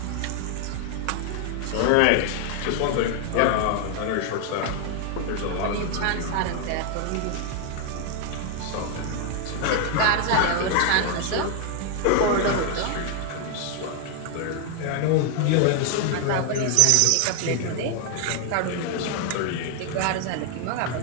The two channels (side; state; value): both; different; correlation 0.00